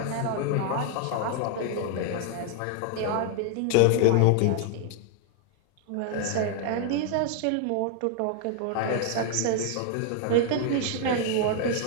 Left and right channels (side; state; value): both; different; correlation 0.00